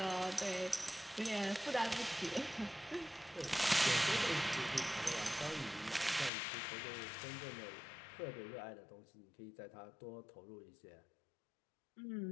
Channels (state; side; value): drops out; right; at 6.3 s